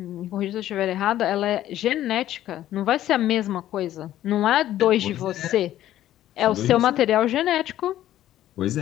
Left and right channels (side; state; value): right; quieter; 12.9 dB